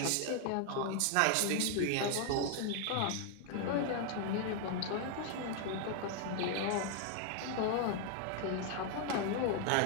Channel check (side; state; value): both; different; correlation 0.00